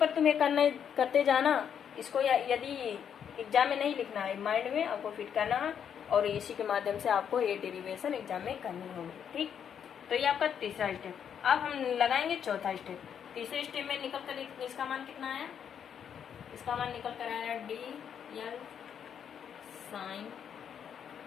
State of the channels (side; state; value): right; quieter; 8.2 dB